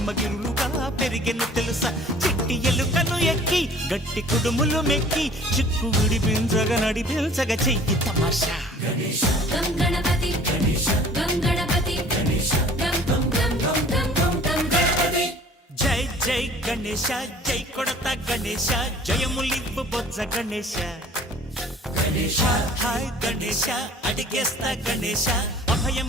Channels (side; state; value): both; normal; correlation 0.50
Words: పెరిగెను తెలుసా చిట్టి ఎలుకను ఎక్కి గట్టి కుడుములు మెక్కి చిక్కు విడిపించగ నడిపించగ చెయ్యి తమాషా గణేశ గం గణపతి గణేశ గం గణపతి గణేశ గం గం గం గం గం గం గం గణపతి జై జై గణేశ జై కొడత గణేశ జయములివ్వు బొజ్జ గణేశ గణేశ హాయ్ గణేశ అడిగేస్తా గణేశ